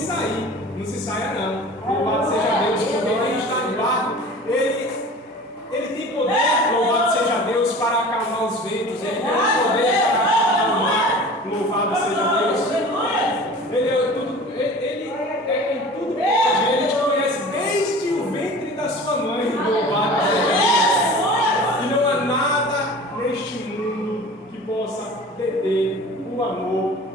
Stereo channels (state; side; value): normal; both; correlation 0.40